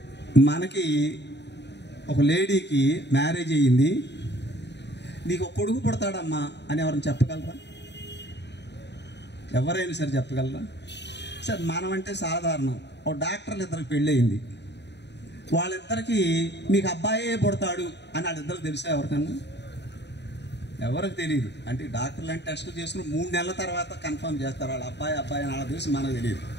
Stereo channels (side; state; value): right; late; 0.50 ms